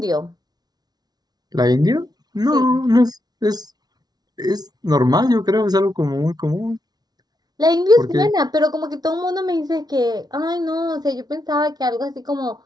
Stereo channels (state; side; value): late; left; 0.19 ms